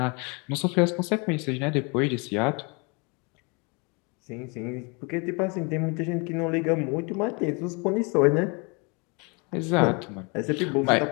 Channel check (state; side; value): quieter; right; 31.2 dB